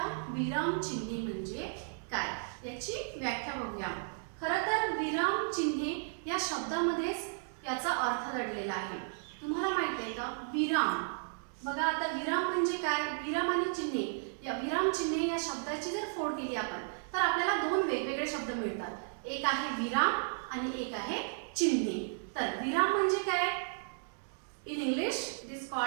विराम चिन्हे म्हणजे काय, याची व्याख्या बघूया. खरं तर विराम चिन्हे या शब्दामध्येच याचा अर्थ दडलेला आहे. तुम्हाला माहित आहे का विराम? बघा आता विराम म्हणजे काय? विराम आणि चिन्हे, या विराम चिन्हे या शब्दाची जर फोड केली आपण तर आपल्याला दोन वेगवेगळे शब्द मिळतात. एक आहे विराम आणि एक आहे चिन्हे. तर विराम म्हणजे काय? In English it is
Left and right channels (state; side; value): silent; left; digital silence